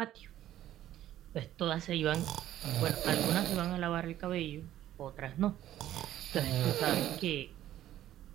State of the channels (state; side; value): quieter; left; 12.7 dB